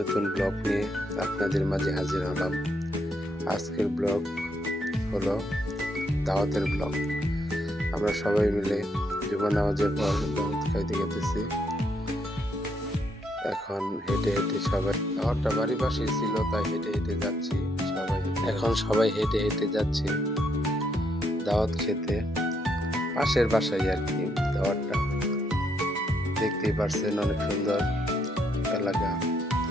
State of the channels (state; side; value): normal; both; correlation 0.75